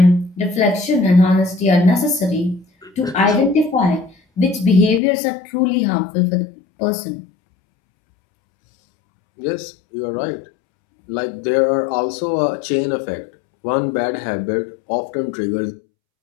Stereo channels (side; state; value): right; drops out; at 5.0 s